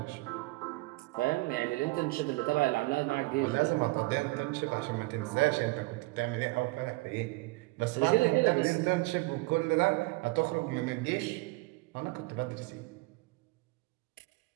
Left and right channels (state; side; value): quieter; left; 23.3 dB